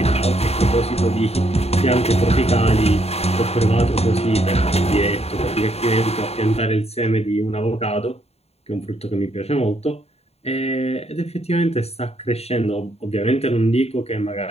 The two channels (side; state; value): right; late; 0.30 ms